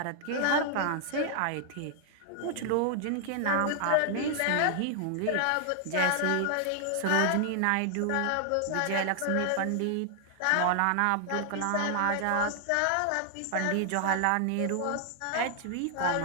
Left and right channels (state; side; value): different; both; correlation 0.00